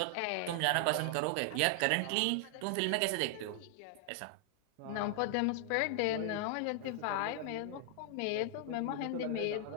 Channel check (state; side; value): different; both; correlation 0.00